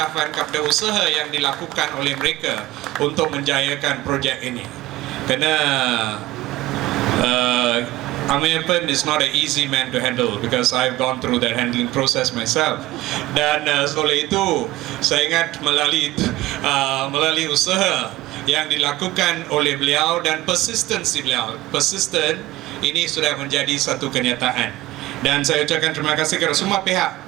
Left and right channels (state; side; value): quieter; left; 17.1 dB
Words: kepada usaha yang dilakukan oleh mereka untuk menjayakan projek ini. Kerana Ameyapen is not an easy man to handle, because I've gone through that handling process myself. Dan oleh itu saya ingat melalui usaha yang dilakukan oleh beliau dan persistensi beliau, persisten, ini sudah menjadi satu kenyataan. Dan saya ucapkan terima kasih kepada semua pihak,